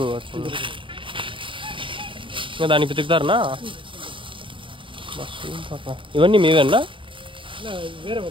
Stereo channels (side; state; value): left; late; 0.25 ms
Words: వచ్చింది. ఇంకా దాన్ని పితుకుతారనా? ఇవన్నీ మీవేనా? వేరే